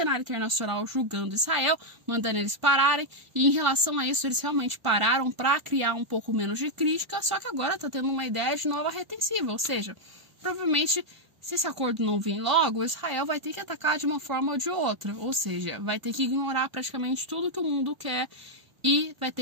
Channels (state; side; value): late; left; 1.5 ms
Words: internacional julgando Israel, mandando eles pararem, e em relação a isso eles realmente pararam para criar um pouco menos de crítica, só que agora tá tendo uma ideia de nova retensiva, ou seja, provavelmente se esse acordo não vir logo, Israel vai ter que atacar de uma forma ou de outra, ou seja, vai ter que ignorar praticamente tudo que o mundo quer e vai